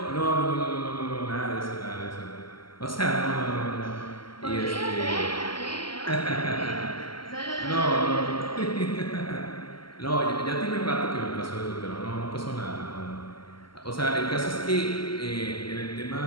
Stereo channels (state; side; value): late; right; 0.73 ms